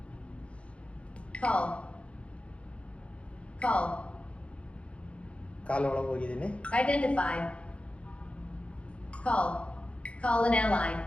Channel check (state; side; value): late; right; 0.061 ms